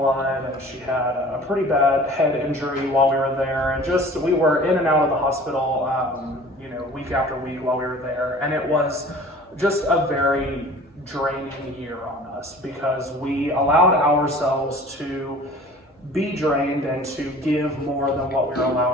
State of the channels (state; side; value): normal; both; correlation 0.45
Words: and she had a pretty bad head injury while we were there, and we were in and out of the hospital week after week while we were there, and it was just a very draining year on us because we allowed ourselves to be drained and to give more than what we were